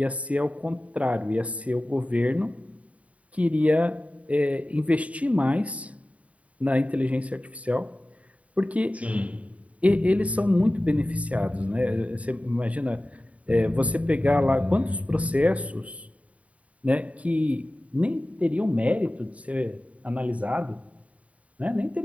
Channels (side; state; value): left; late; 0.067 ms